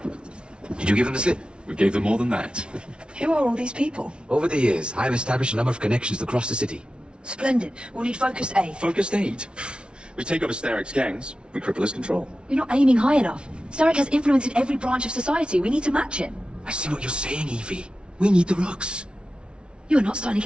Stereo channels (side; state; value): left; late; 0.057 ms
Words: Did you give them the slip? We gave them more than that. Who are all these people? Over the years, I have established a number of connections across the city. Splendid. We'll need focused aid. Focused aid. We take over Starrick's gangs, we cripple his control. You're not aiming high enough. Starrick has influence in every branch of society. We need to match him. I see what you're saying, Evie. We need the Rooks. You are not starting a